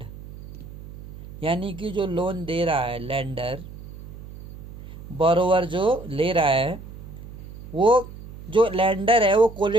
यानी कि जो लोन दे रहा है लेंडर, बोरोवर जो ले रहा है, वो जो लेंडर है वो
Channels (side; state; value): right; noise; hum, 14 dB below the sound